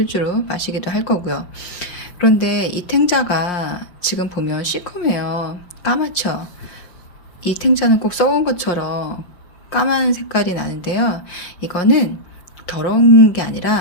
마시기도 할 거고요. 그런데 이 탱자가 지금 보면 시커매요. 까맣죠. 이 탱자는 꼭 썩은 것처럼 까만 색깔이 나는데요. 이거는 더러운 게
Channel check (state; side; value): late; right; 5.7 ms